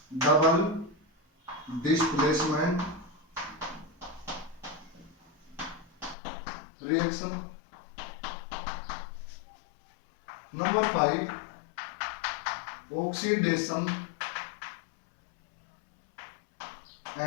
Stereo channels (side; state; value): right; drops out; at 6.2 s